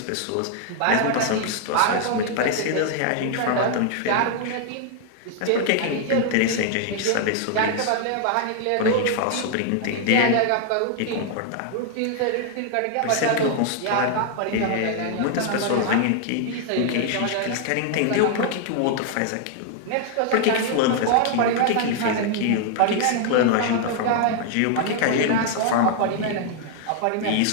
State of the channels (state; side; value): different; both; correlation 0.00